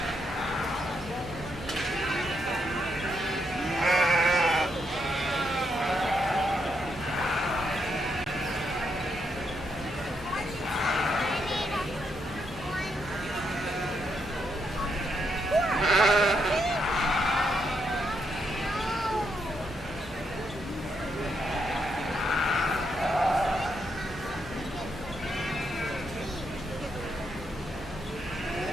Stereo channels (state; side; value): normal; both; correlation 0.78